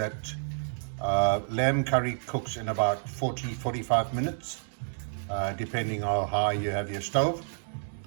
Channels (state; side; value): silent; left; digital silence